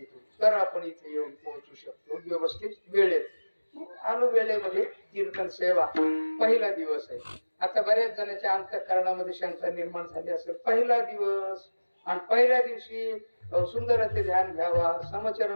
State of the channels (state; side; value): inverted; both; correlation -1.00